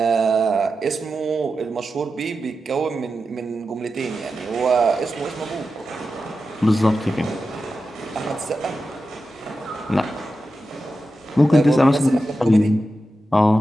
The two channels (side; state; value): both; normal; correlation 0.91